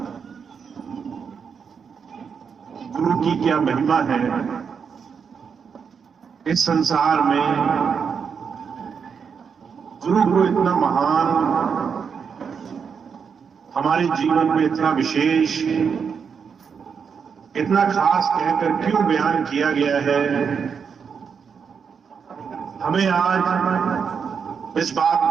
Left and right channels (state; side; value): quieter; left; 6.4 dB